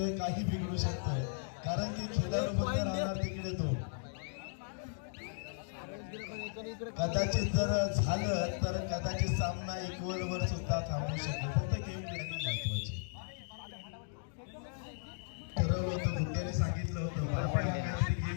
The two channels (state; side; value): silent; right; digital silence